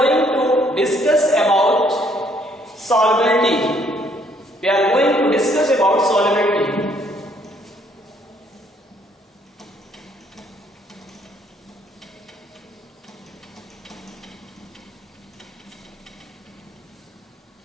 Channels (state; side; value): normal; both; correlation 0.66